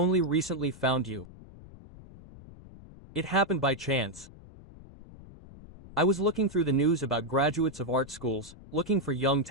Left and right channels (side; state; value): left; noise; rumble, 19 dB below the sound